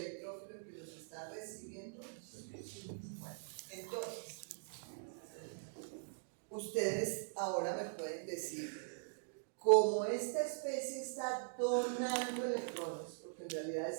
que los está recibiendo. Bueno, entonces, ustedes ahora me pueden decir, como esta especie está donando electrones, porque en realidad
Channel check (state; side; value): silent; left; digital silence